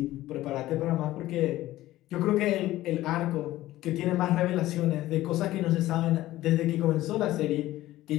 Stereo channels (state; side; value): quieter; right; 15.7 dB